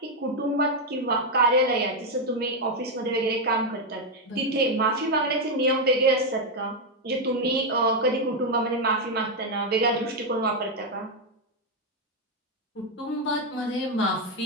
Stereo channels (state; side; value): normal; both; correlation 0.03